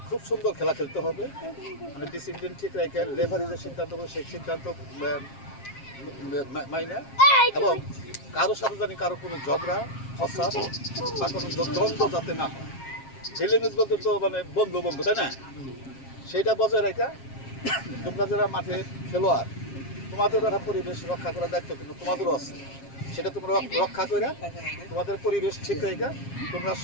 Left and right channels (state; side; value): late; right; 7.4 ms